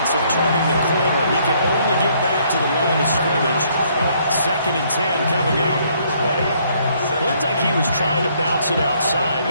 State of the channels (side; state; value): both; inverted; correlation -0.67